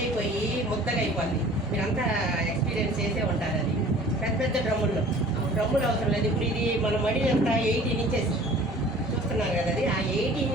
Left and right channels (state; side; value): normal; both; correlation 0.48